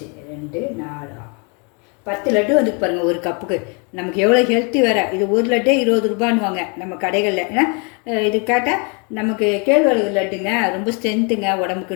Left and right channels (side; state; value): right; quieter; 34.7 dB